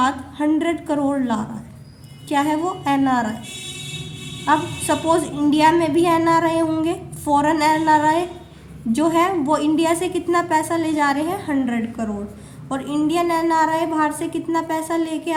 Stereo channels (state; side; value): identical; both; correlation 1.00